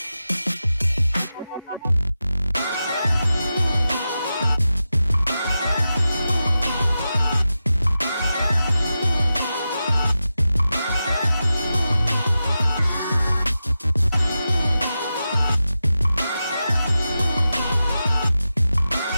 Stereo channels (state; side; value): inverted; both; correlation -0.91